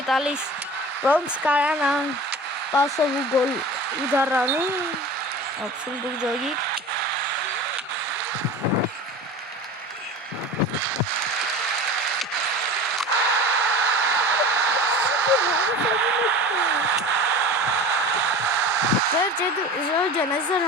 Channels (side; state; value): both; normal; correlation 0.35